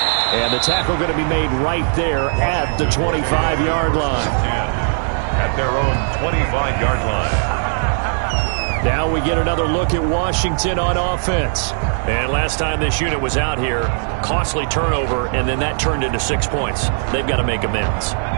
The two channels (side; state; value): left; silent; 55 dB below the other